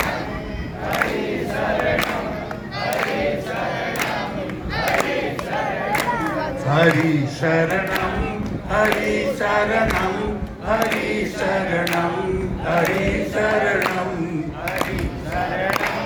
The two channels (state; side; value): identical; both; correlation 1.00